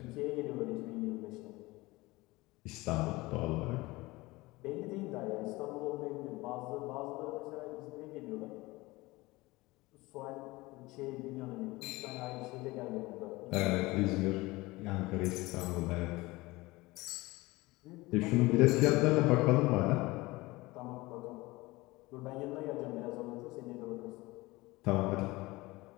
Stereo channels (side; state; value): right; quieter; 21.1 dB